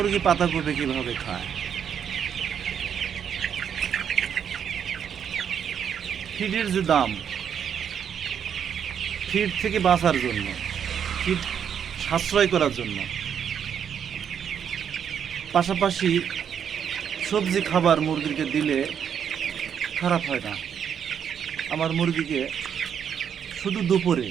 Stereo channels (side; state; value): left; quieter; 8.1 dB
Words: পাতাকপি কিভাবে খায়। ফিডের যে দাম, ফিড থেকে বাঁচার জন্য, ফিড সাশ্রয় করার জন্য, পাশাপাশি সবজি খাবার মুরগিকে দিলে খারাপ হয় না। আমার মুরগিকে শুধু দুপুরে